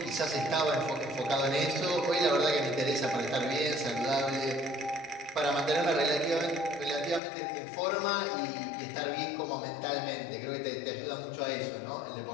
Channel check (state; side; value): drops out; right; at 7.2 s